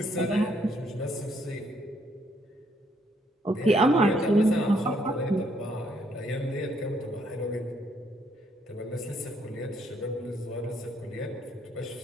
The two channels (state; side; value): normal; both; correlation 0.70